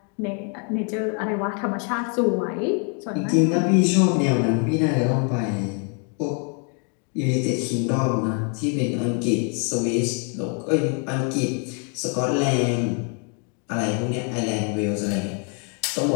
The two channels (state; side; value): quieter; right; 39.4 dB